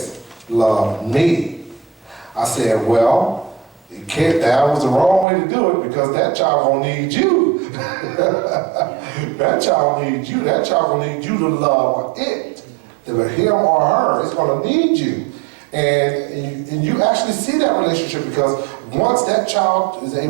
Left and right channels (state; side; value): drops out; left; at 5.2 s